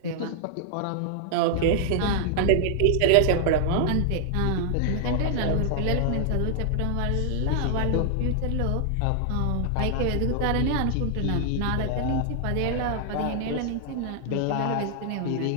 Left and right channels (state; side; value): different; both; correlation 0.00